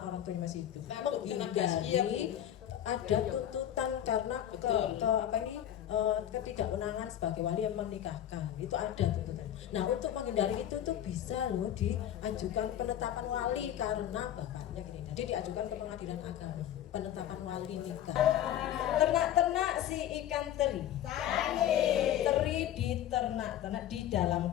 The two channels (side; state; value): right; quieter; 11.2 dB